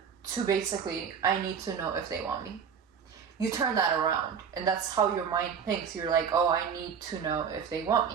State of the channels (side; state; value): left; quieter; 7.1 dB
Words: to basically I need to know if they want me. You turn that around, and that's how your mind thinks. You're like, oh, I need to know if they want